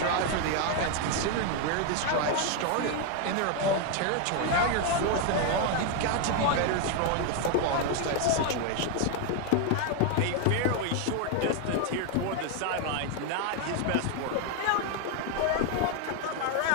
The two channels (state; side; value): different; both; correlation 0.01